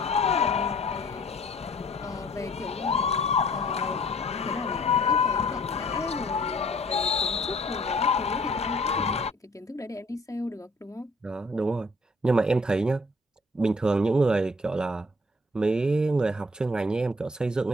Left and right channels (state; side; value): normal; both; correlation 0.57